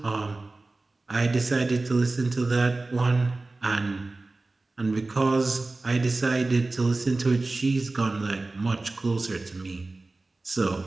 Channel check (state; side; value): quieter; left; 3.2 dB